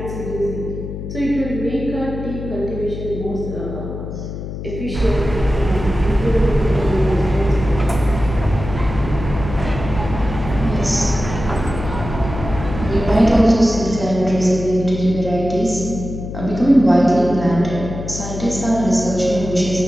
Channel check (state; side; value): noise; left; hum, 8 dB below the sound